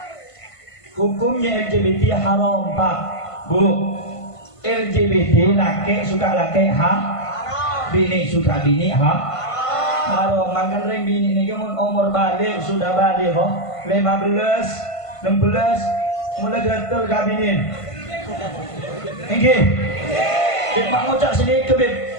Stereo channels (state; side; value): late; right; 1.5 ms